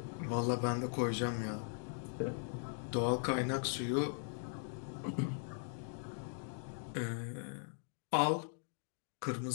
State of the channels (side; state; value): right; silent; digital silence